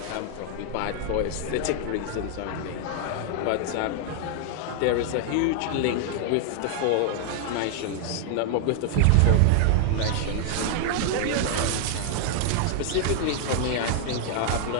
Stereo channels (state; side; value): different; both; correlation 0.00